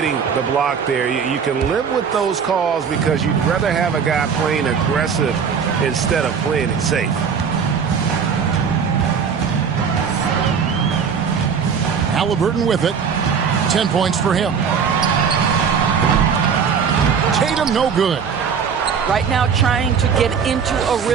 the block there. You can live with those calls because you'd rather have a guy playing aggressive instead of playing it safe. Halliburton with it. 10 points for him. Tatum no good. Right now trying to get into a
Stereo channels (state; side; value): quieter; left; 6.6 dB